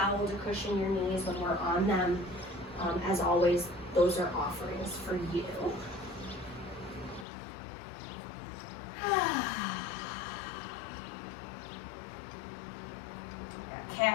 to cushion your knees when we're on them, as always, those are offerings for you. Got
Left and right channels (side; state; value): right; drops out; at 7.2 s